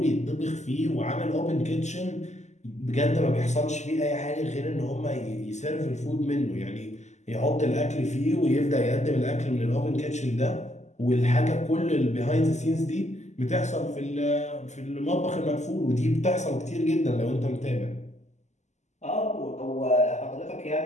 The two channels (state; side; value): late; right; 0.33 ms